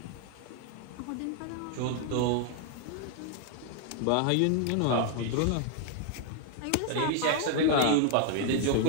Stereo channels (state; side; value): different; both; correlation 0.00